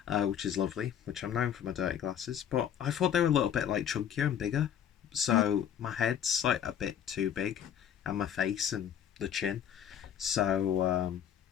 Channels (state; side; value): quieter; right; 9.2 dB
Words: which is lovely, which I'm known for my dirty glasses. But I thought they were a little bit like chunkier and bigger, so my head's like a bit too big, and my face and the chin. So